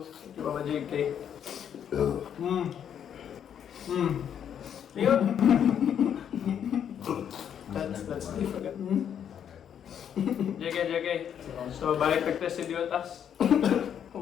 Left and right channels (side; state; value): right; quieter; 8.8 dB